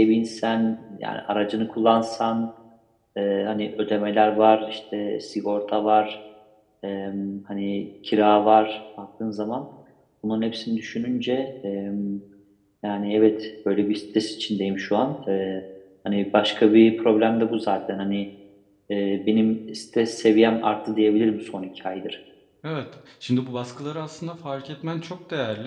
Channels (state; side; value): identical; both; correlation 1.00